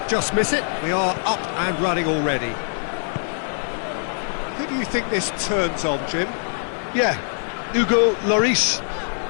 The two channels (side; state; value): right; silent; 63 dB below the other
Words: just miss it, we are up and running already. Who do you think this turns on, Jim? Yeah, Hugo Lloris.